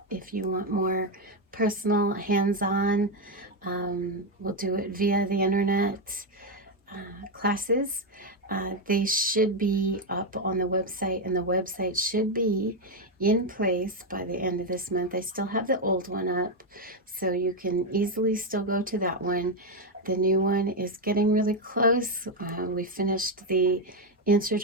If you want more personal, hands-on, we'll do it via the internet classes. They should be up on the website, and the website should be in place by the end of this month. I still have the old one up, so you can easily still go to that one. The new one is getting really close. We finished the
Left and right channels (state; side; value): normal; both; correlation 0.06